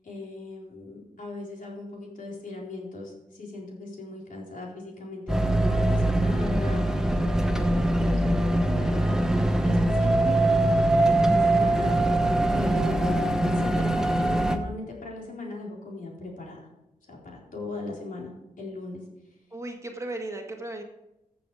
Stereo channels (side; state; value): both; normal; correlation 0.91